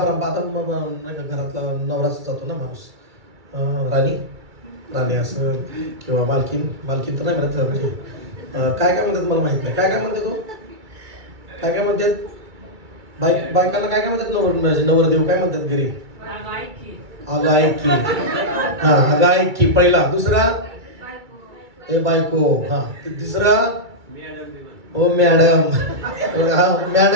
आता घरातला नवराच जातो ना माणूस. राणी असं किंवा मालकीन तर नाही म्हणत. म्हणजे काय म्हणतात मला माहित नाही. काय म्हणते तो? काय म्हणतात बायकांना? काय म्हणतात? नवरदेव काय म्हणतात घरी? अगं ऐक की. हा अगं ऐक की पहिला. दुसरा ए बायको. हा तिसरा ओ मॅडम.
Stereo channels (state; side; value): late; left; 2.3 ms